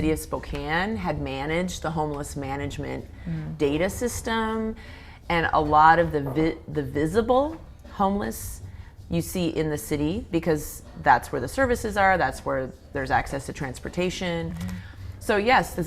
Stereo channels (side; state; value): both; identical; correlation 1.00